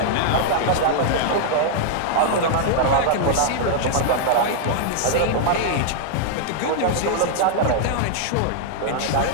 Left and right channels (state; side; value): different; both; correlation -0.01